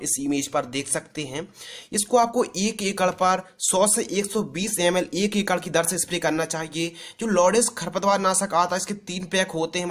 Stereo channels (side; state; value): both; identical; correlation 1.00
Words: इस इमेज पर देख सकते हैं। इसको आपको 1 एकड़ पर 100 से 120 ml 1 एकड़ की दर से स्प्रे करना चाहिए। जो लोडेस खरपतवार नाशक आता है इसके 3 पैक होते हैं,